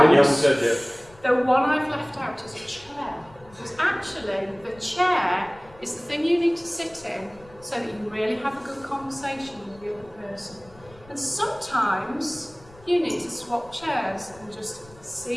The one I've left out is a chair. Because actually, the chair is the thing you need to sit in so that you really have a good conversation with the other person. And sometimes you need to swap chairs and just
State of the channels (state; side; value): noise; left; rumble, 25 dB below the sound